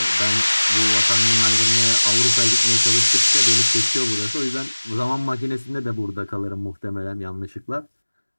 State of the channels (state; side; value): inverted; both; correlation -1.00